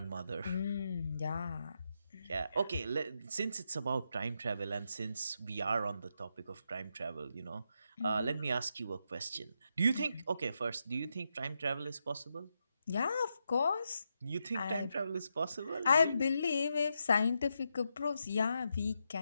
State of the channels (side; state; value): both; inverted; correlation -0.83